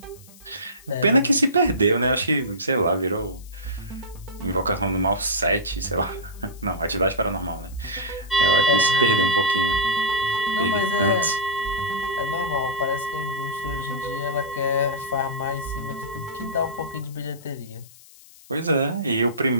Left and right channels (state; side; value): noise; left; hiss, 23 dB below the sound